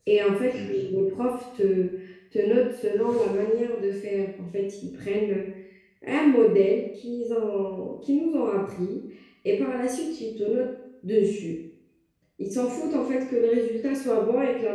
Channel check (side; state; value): both; identical; correlation 1.00